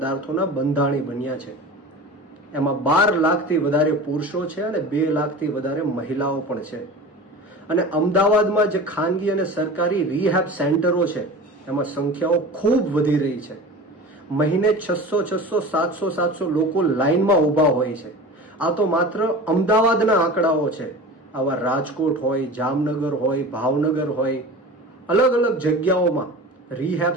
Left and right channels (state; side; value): normal; both; correlation 0.35